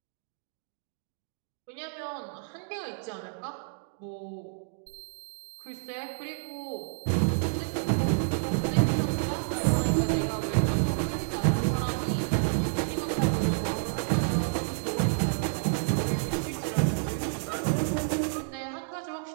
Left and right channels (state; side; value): silent; left; digital silence